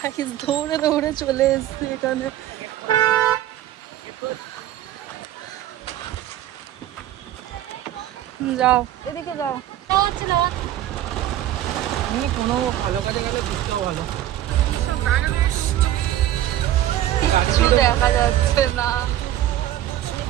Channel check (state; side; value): quieter; left; 13.0 dB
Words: দৌড়ে দৌড়ে চলে এসছি এখানে। যাও এদিকে যাও। আমি কোনো ভালো কাজে গেলে বুঝতেও ভালো। কিছু দেখা যাচ্ছে না